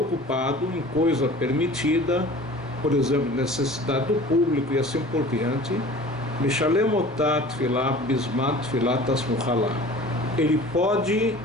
ocupado em coisa permitida, por exemplo, necessidade do público e assim por diante, Mishalem otat tefilá bismat tefilá tasmuchalá. Ele pode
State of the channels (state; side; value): normal; both; correlation 0.43